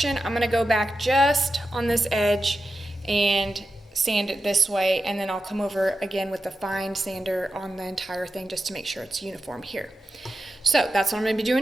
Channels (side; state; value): both; normal; correlation 0.90